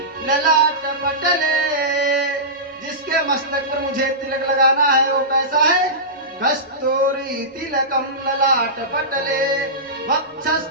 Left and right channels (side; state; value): both; normal; correlation -0.18